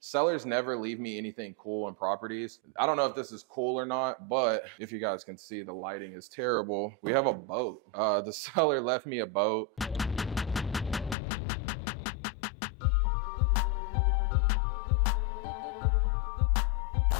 Sellers never leave me anything cool in properties. I don't know if this is cool or not, but if you guys can see, the lighting is terrible. We have a boat. The seller left me a boat.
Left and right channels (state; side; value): drops out; right; at 11.2 s